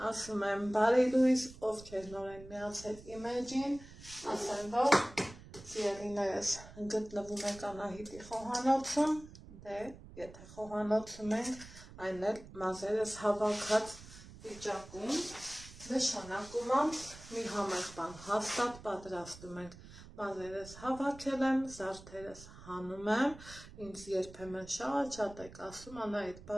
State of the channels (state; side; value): noise; right; rumble, 17 dB below the sound